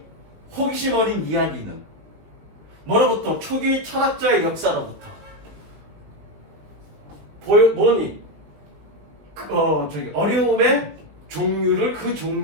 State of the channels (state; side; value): late; left; 19 ms